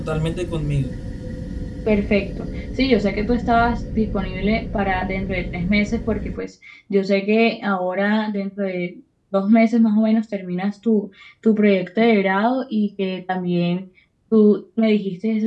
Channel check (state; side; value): identical; both; correlation 1.00